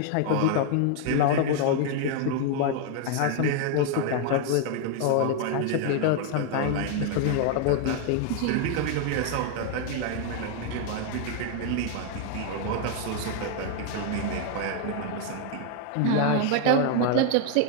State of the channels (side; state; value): both; different; correlation 0.00